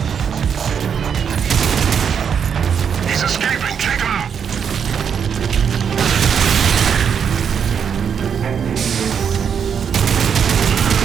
He's escaping. Take him out.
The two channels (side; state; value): left; quieter; 7.4 dB